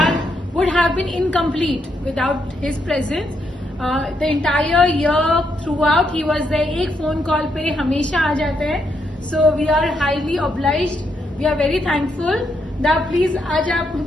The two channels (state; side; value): normal; both; correlation 0.78